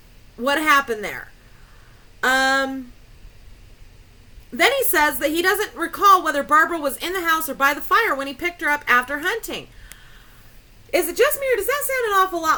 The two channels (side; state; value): both; identical; correlation 1.00